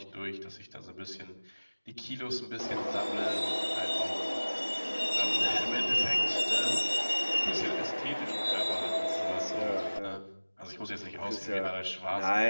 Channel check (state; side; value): inverted; both; correlation -1.00